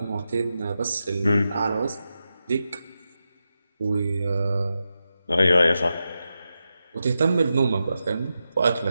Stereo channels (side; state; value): both; inverted; correlation -0.89